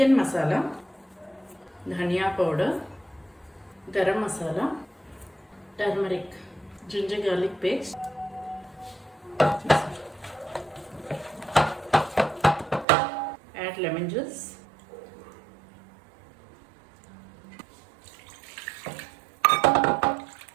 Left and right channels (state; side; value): drops out; left; at 12.9 s